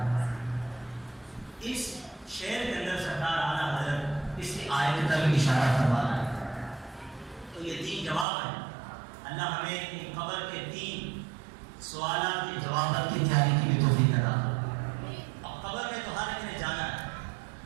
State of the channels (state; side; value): drops out; left; at 8.2 s